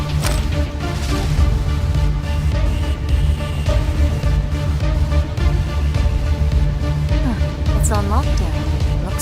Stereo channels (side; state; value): both; identical; correlation 1.00